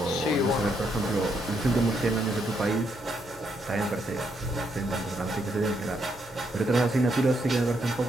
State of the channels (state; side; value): normal; both; correlation 0.76